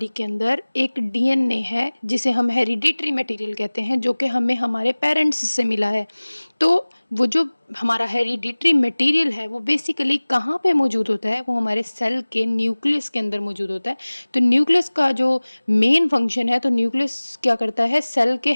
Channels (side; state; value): both; inverted; correlation -1.00